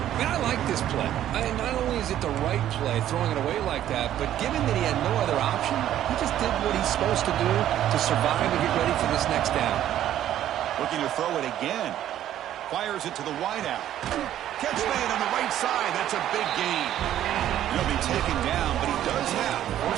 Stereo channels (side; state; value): left; quieter; 11.8 dB